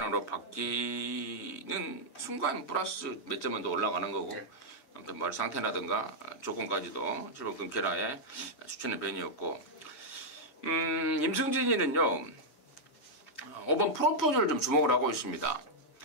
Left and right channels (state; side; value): late; right; 7.0 ms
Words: 바뀌는 순간 플러스 몇 점은 더 올라가는 거고, 네. 아무튼 뭐 상태라든가 조건까지도 7번 금케라의 추천의 변이었고, 임승진이는요 5번 프로포즈를 좀 주목을 하고 있습니다.